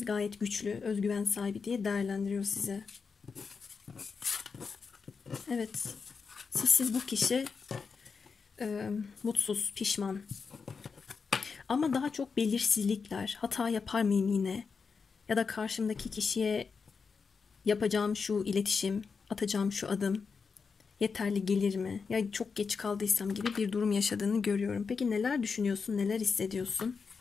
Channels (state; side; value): quieter; right; 5.3 dB